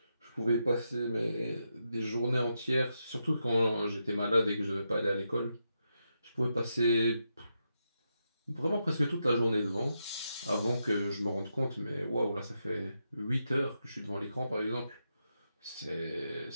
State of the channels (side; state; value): both; inverted; correlation -0.84